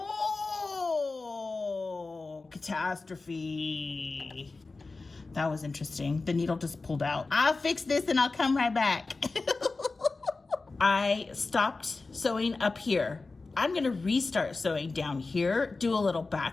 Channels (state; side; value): quieter; right; 3.7 dB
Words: catastrophe. That was interesting. The needle just pulled out. I'll fix this and I'll come right back. I stopped sewing up here. I'm gonna restart sewing down here, do a little